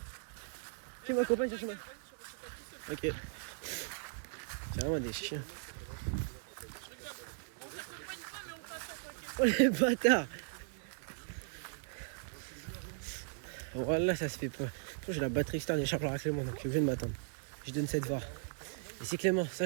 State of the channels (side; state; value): left; silent; digital silence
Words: chercher ma... Ok. C'est vraiment des chiens. Oh les bâtards. Voilà, ça se fait pas. J'ai la batterie externe et chargeur à Clément, donc je viens de m'attendre. Je donne cette VAR. Et c'est Clément,